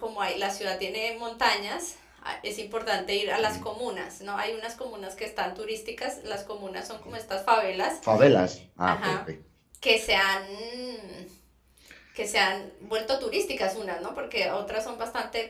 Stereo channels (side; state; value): both; identical; correlation 1.00